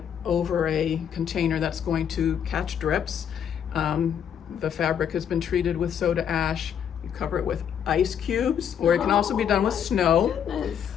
over a container that's going to catch drips. The fabric has been treated with soda ash, You cover it with ice cubes, or it can also be done with snow. Goodness.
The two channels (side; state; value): right; quieter; 8.5 dB